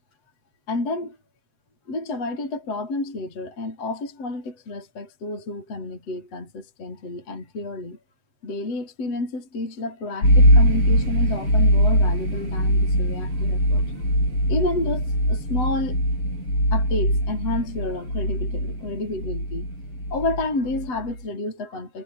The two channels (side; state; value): right; late; 7.9 ms